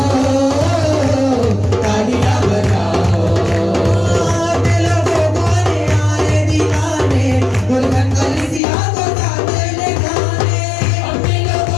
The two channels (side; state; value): right; drops out; at 8.6 s